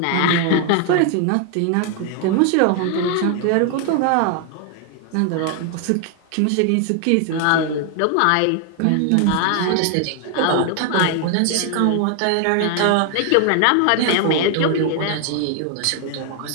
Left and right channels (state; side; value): different; both; correlation 0.00